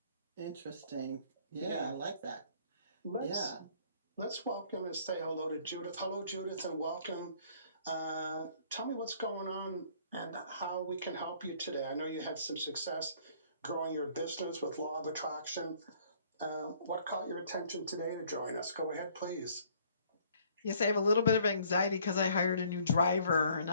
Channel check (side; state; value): both; inverted; correlation -0.59